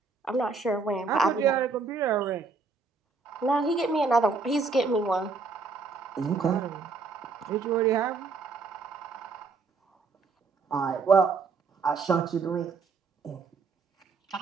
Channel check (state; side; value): quieter; left; 4.5 dB